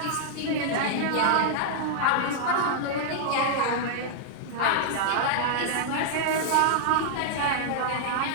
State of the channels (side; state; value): both; different; correlation -0.01